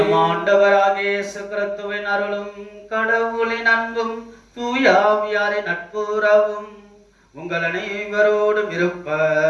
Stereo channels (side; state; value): both; identical; correlation 1.00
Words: ஆண்டவராகிய இயேசு கிறிஸ்துவின் அருளும் கடவுளின் அன்பும் தூயாவியாரின் நட்புறவும் உங்கள் அனைவரோடும்